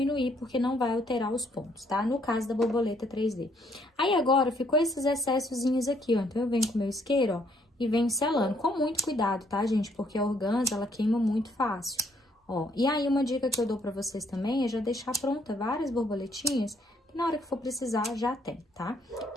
porque não vai alterar os pontos, tá? No caso da borboleta 3D. Aí, agora, ficou esses excessozinhos aqui, ó. Então, eu venho com o meu isqueiro, ó, e venho selando. Com muito cuidado, tá, gente? Porque a organza, ela queima muito fácil. Ó, e aí, uma dica que eu dou pra vocês também é já deixar pronta várias borboletinhas, que na hora que for precisar, já tem, tá?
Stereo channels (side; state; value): both; normal; correlation 0.68